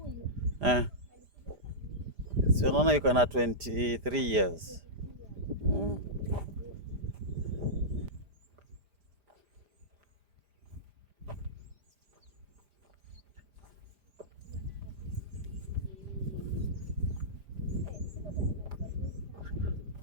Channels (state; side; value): late; left; 5.0 ms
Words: Si unaona yuko na 23 years.